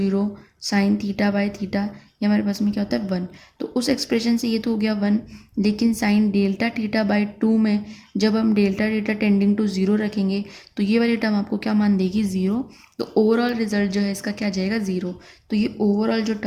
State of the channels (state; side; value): identical; both; correlation 1.00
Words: sine theta by theta ये हमारे पास में क्या होता है 1। तो उस एक्सप्रेशन से ये तो हो गया 1, लेकिन साइन डेल्टा थीटा बाई 2 में जब हम डेल्टा थीटा टेंडिंग टू 0 रखेंगे तो ये वाली टर्म आपको क्या मान देगी 0। तो ओवरऑल रिजल्ट जो है इसका क्या जाएगा 0। तो ये ओवरऑल जो